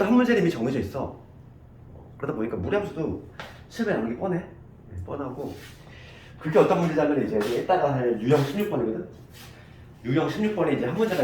한 문제는 이미 정해져 있어. 그러다 보니까 무리함수도 시험에 나오는 게 뻔하고 그게 어떤 문제냐면 이제 이따가 할 유형 16번이거든. 유형 16번에 이제 한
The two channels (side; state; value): both; identical; correlation 1.00